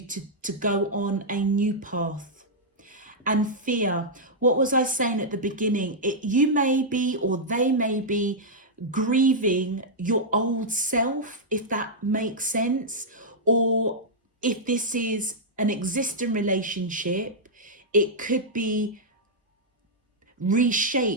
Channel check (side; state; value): both; normal; correlation -0.07